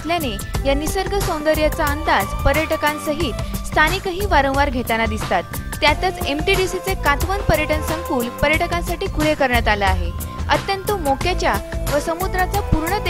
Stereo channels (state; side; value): identical; both; correlation 1.00